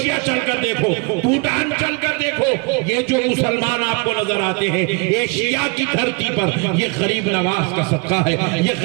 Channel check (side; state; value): left; quieter; 30.9 dB